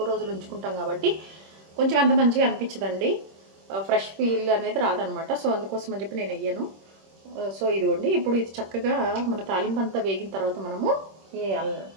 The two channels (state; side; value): late; left; 26 ms